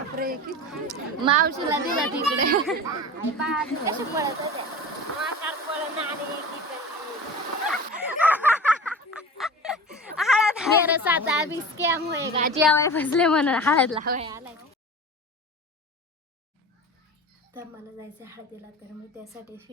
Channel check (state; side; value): normal; both; correlation 0.33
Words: मावशीला दिला तिकडे मेरे साथ अभी स्कैम होएगा जेवाय फसले म्हणून हळद लावाय आलाय. तर मला जायचं हळदीला तर मी त्यासाठी